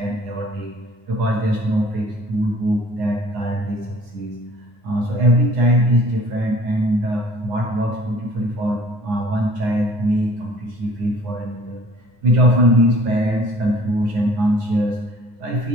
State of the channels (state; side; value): late; left; 9.7 ms